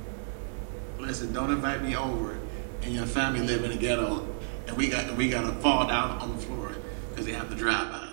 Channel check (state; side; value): silent; left; digital silence